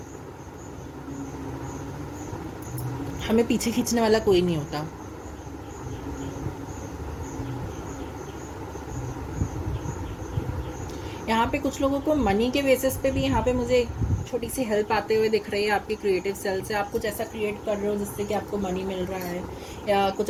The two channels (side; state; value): both; identical; correlation 1.00